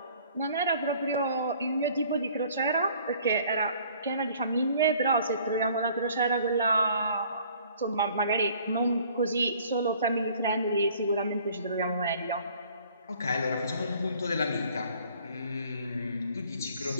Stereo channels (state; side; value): inverted; both; correlation -0.55